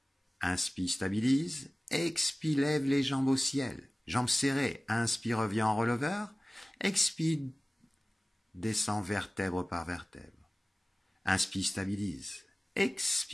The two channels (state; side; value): normal; both; correlation 0.97